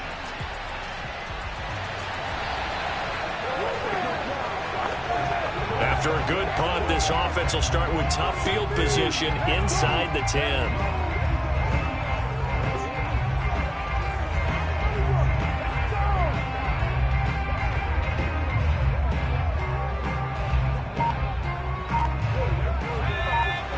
After a good punt, this offense will start with tough field position inside the 10.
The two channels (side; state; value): both; identical; correlation 1.00